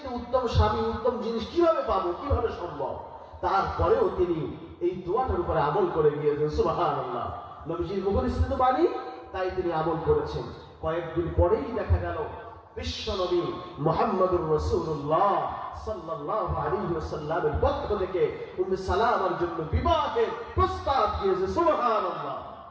উত্তম স্বামী, উত্তম জিনিস কিভাবে পাবো, কিভাবে সম্ভব? তারপরেও তিনি এই দোয়াটার উপরে আমল করে গিয়েছেন। সুবহানাল্লাহ। নবীজির মুখনিসৃত বাণী, তাই তিনি আমল করেছেন। কয়েকদিন পরেই দেখা গেল বিশ্ব নবী মুহাম্মদুর রাসূলুল্লাহ সাল্লাল্লাহু আলাইহি ওয়াসাল্লামের পক্ষ থেকে উম্মে সালামার জন্য বিবাহের প্রস্তাব দিয়েছে। সুবহানাল্লাহ।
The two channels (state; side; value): identical; both; correlation 1.00